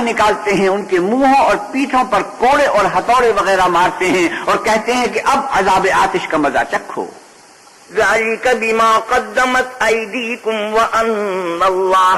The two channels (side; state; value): both; identical; correlation 1.00